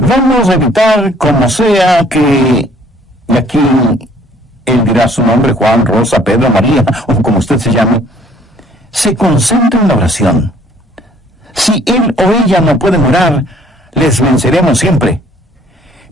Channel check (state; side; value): normal; both; correlation 0.59